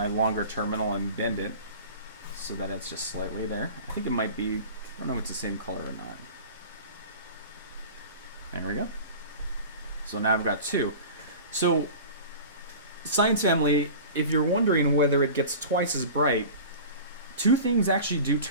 longer terminal and bend it so that it's just slightly there. I think it might be, I don't know if it's the same color or not. There we go. So now I've got two. So, Science Family, if you're wondering whether it gets twice as bright, two things actually do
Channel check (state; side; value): inverted; both; correlation -0.37